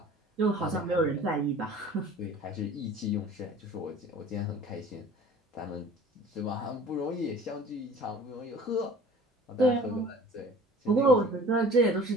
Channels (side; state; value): both; normal; correlation 0.47